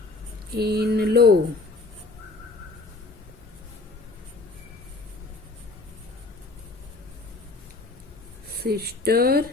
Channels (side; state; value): right; quieter; 3.5 dB